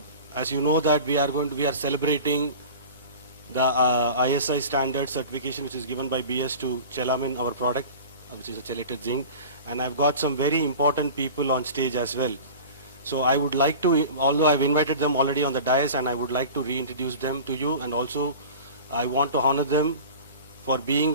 you know that we are celebrating the ISI standard certification which is given by BS to Chelamin, our product, which is a chelated zinc. And I've got some very important people on stage as well. So I would like to, although I've invited them already on the dais, and I would like to reintroduce them to you, and also I want to honor them for being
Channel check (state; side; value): inverted; both; correlation -0.37